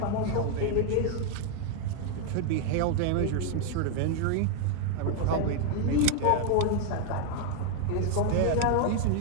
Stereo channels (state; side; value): different; both; correlation 0.01